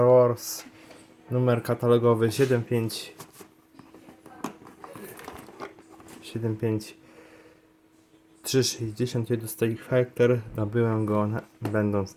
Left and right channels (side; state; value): both; identical; correlation 1.00